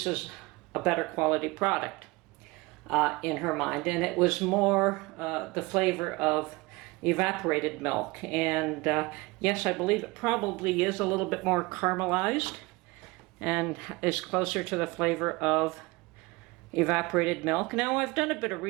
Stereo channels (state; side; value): quieter; left; 23.6 dB